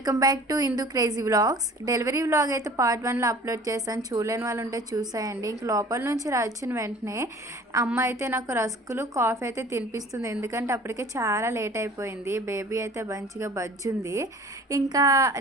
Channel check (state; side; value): normal; both; correlation 0.47